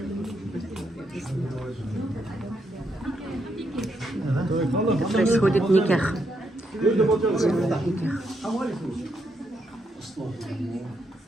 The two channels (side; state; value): both; normal; correlation 0.78